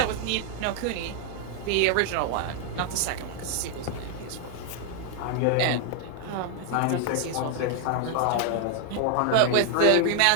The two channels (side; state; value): both; different; correlation 0.00